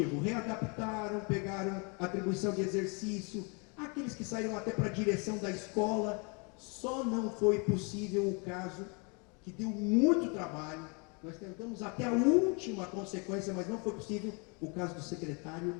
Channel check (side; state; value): right; quieter; 33.5 dB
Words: readaptaram, pegaram atribuição de exercício, aqueles que saíram até para a direção da escola. Só não foi possível o caso que deu muito trabalho. Nós tentamos até a última consequência, mas não foi possível, o caso do secretário